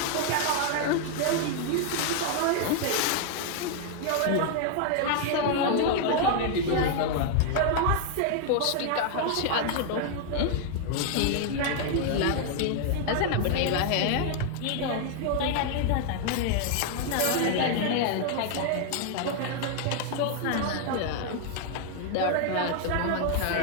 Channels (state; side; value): different; both; correlation 0.00